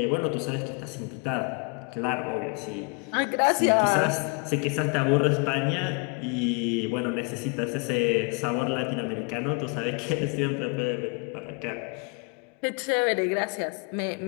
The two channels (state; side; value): quieter; right; 34.0 dB